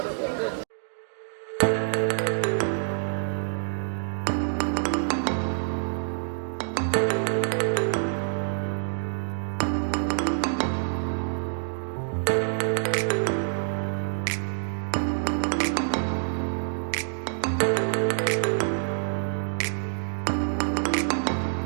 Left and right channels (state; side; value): silent; left; digital silence